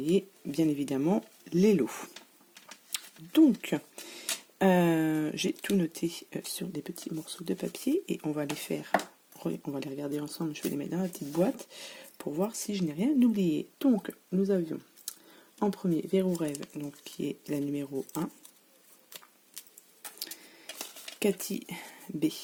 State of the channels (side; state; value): both; identical; correlation 1.00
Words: bien évidemment les lots. Donc j'ai tout noté sur des petits morceaux de papier et on va les regarder ensemble. Je vais les mettre dans la petite boîte pour voir si je n'ai rien oublié. Donc nous avions en premier Verrou Rêve, donc qui est la numéro 1. Cathy B,